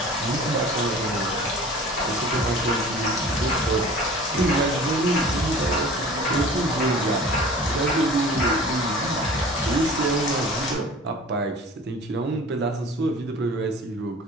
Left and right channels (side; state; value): both; normal; correlation 0.43